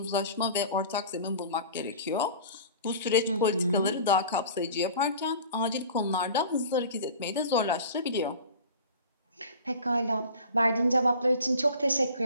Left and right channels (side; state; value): both; inverted; correlation -0.42